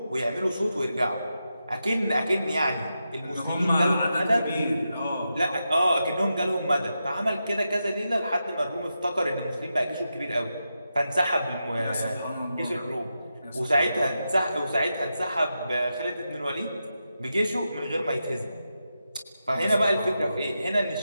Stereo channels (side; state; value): both; inverted; correlation -0.88